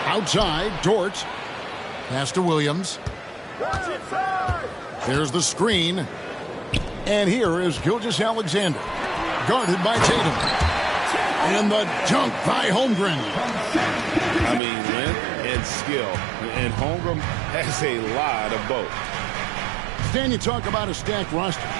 Outside, Dort. Pass to Williams. There's the screen. And here is Gilgeous-Alexander. Guarded by Tatum. And the dunk by Holmgren. I mean, length and skill. And Holmgren has a lot of both. Stan, you talk about a stacked roster.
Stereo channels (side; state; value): left; drops out; at 14.6 s